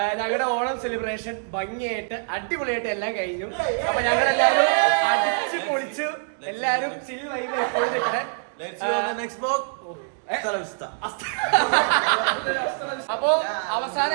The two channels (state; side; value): silent; left; digital silence